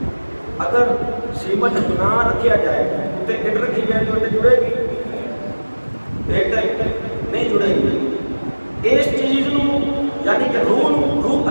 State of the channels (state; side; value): inverted; both; correlation -1.00